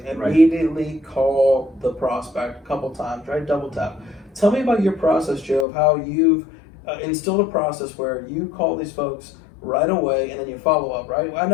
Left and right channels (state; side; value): drops out; right; at 5.7 s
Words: immediately call the prospect a couple times, right? Double tap. Tell me about your process, Joe, of how you've instilled a process where you call these folks right away and then you follow up, right? I